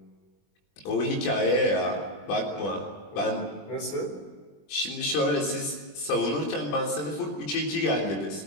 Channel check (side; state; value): right; late; 20 ms